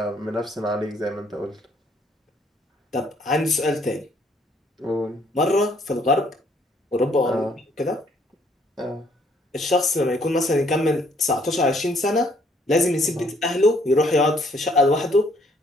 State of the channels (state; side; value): normal; both; correlation 0.65